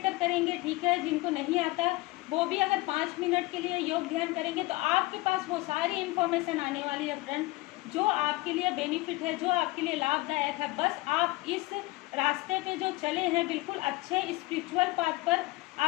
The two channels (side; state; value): right; quieter; 20.8 dB